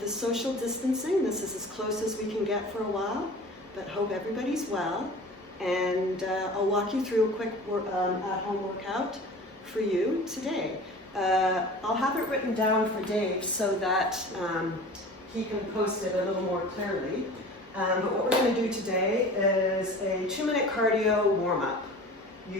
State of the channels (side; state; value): both; normal; correlation 0.40